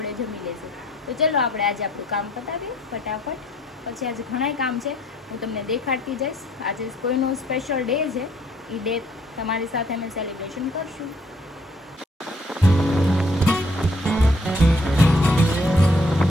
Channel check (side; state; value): both; normal; correlation 0.64